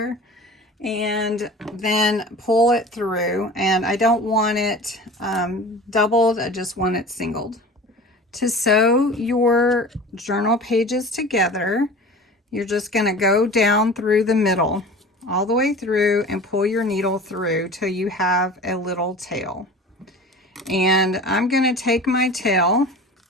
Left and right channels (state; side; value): normal; both; correlation 0.38